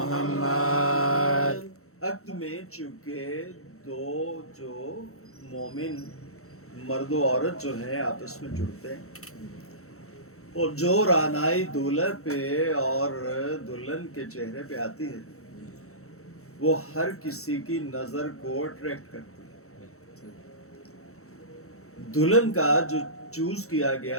عقد میں چونکہ دو جو مومن مرد و عورت جو ہیں آپس میں جڑتے ہیں، اور جو رانائی دولہا پہ اور دلہن کے چہرے پہ آتی ہے وہ ہر کسی کی نظر کو اٹریکٹ کرتی ہے. دلہن کا جو چوز کیا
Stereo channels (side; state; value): right; late; 0.64 ms